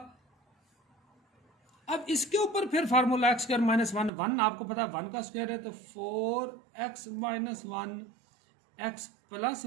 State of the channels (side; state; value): left; drops out; at 4.1 s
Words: अब इसके ऊपर फिर फार्मूला एक्स स्क्वायर माइनस 1 आपको पता है 1 का स्क्वायर है, तो 4x माइनस 1 एक्स प्लस